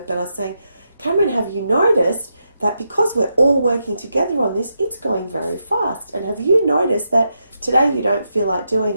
but I was saying, Cameron, have you noticed that because we're all working together on this, it's going very fast? And have you noticed that today you don't feel like doing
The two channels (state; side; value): inverted; both; correlation -0.84